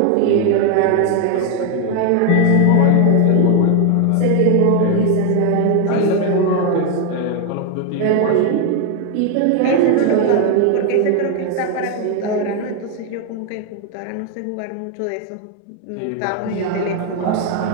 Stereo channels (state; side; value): different; both; correlation 0.01